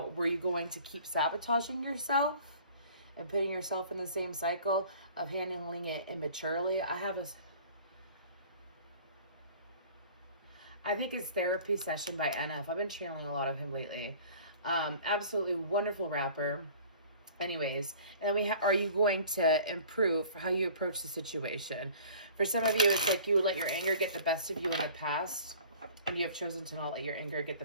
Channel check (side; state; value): both; inverted; correlation -0.47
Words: Were you going to keep sabotaging yourself and putting yourself in the same cycle of handling it immaturely? I think it's Therapy Session by NF. I've been channeling a lot of him lately. Absolutely wonderful rapper. Anyways, and then are you going to improve how you approach the situation? For some of you, it's like you would let your anger get the best of you in the past, and you have chosen to not let your anger get the